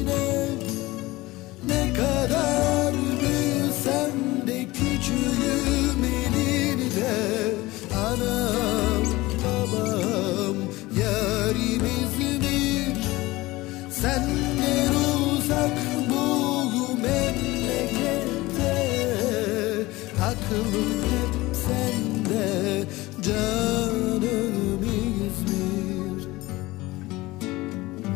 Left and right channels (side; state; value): right; quieter; 19.9 dB